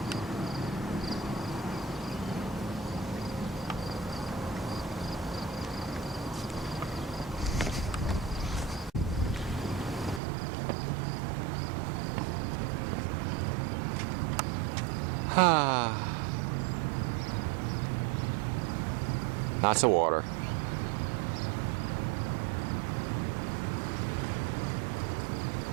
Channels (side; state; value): left; drops out; at 10.2 s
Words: Lots of water.